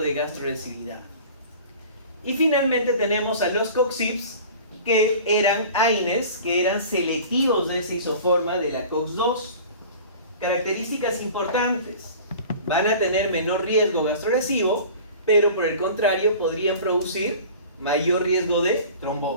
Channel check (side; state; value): both; inverted; correlation -0.41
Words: gastrolesividad. Y finalmente tenemos a los COX-IPs, que eran AINES, que eran selectivos de esa isoforma de la COX-2. Características importantes: van a tener menor riesgo gastrolesivo, pero por el contrario podrían producir mayor riesgo de